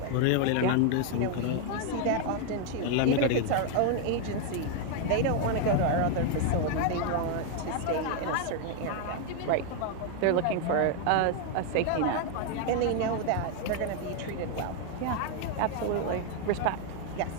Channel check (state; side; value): different; both; correlation 0.01